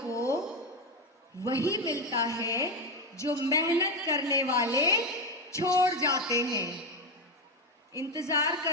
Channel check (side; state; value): both; normal; correlation 0.12